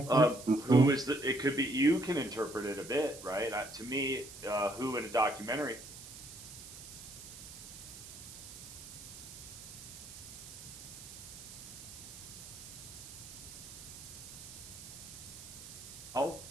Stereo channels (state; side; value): noise; right; hiss, 13 dB below the sound